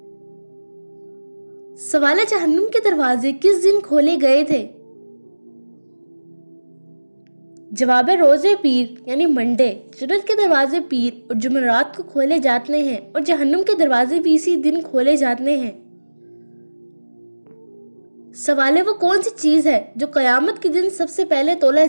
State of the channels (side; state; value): both; inverted; correlation -1.00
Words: سوال ہے، جہنم کے دروازے کس دن کھولے گئے تھے؟ جواب ہے، روزے پیر یعنی منڈے۔ جنت کے دروازے پیر اور جمعرات کو کھولے جاتے ہیں اور جہنم کے دروازے بھی اسی دن کھولے جاتے ہیں۔ سوال ہے، وہ کون سی چیز ہے جو قیامت کے دن سب سے پہلے تولا